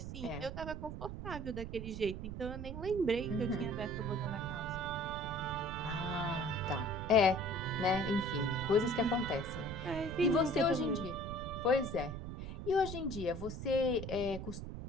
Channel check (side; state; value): right; noise; rumble, 7 dB below the sound